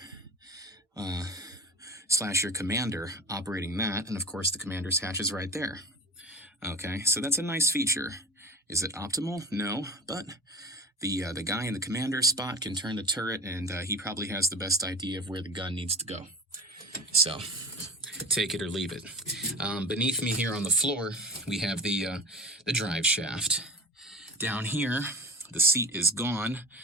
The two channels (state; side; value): normal; both; correlation 0.35